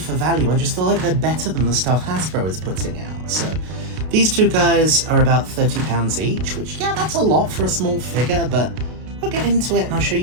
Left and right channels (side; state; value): left; late; 32 ms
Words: value, I just feel like they're better than the stuff Hasbro is putting out. So these two guys are about £30 each, which, yeah, that's a lot for a small figure, but we'll get into it and I'll show